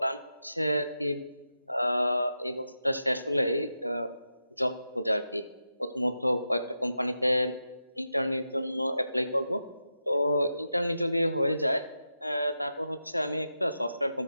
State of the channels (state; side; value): inverted; both; correlation -0.89